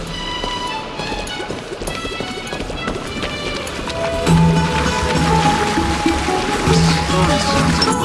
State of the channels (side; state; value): both; identical; correlation 1.00